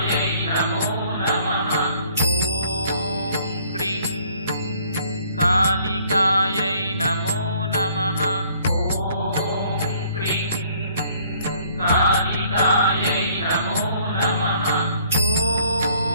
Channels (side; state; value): both; inverted; correlation -0.60